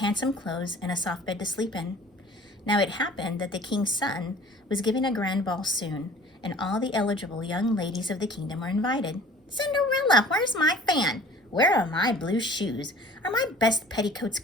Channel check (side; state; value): both; normal; correlation 0.48